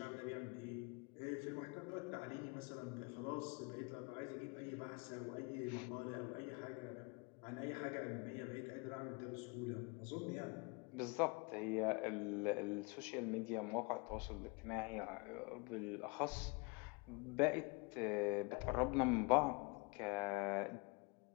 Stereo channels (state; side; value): quieter; right; 29.6 dB